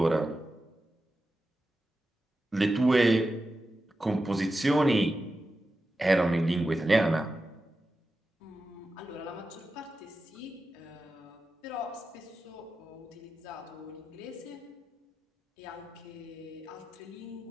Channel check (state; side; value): normal; both; correlation 0.92